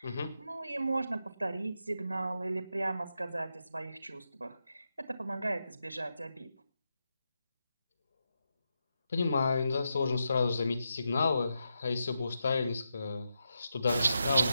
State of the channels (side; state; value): both; inverted; correlation -0.86